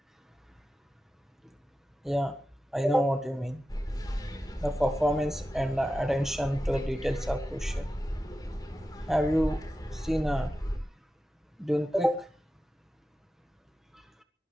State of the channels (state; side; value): normal; both; correlation 0.92